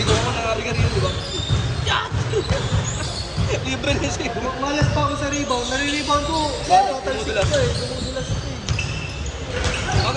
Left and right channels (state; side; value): identical; both; correlation 1.00